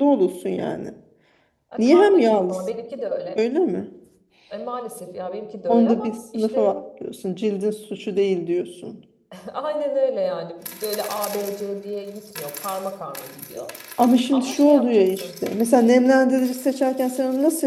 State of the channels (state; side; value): identical; both; correlation 1.00